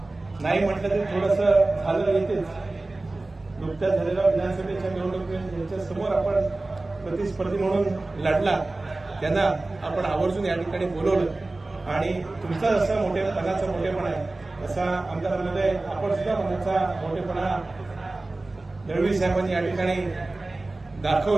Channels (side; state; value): left; quieter; 3.1 dB